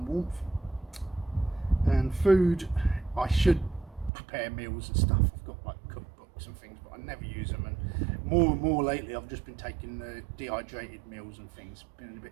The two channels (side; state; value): left; drops out; at 4.1 s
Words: warmth. And food, I should prepare meals and stuff. I've got like cookbooks and things, but I never use them, and more lately I've just been taking the dehydrated meals and things, been a